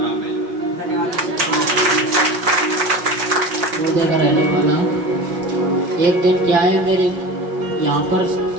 मिला। रहने वाला एक दिन क्या है, मेरे यहाँ पर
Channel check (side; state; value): left; late; 5.5 ms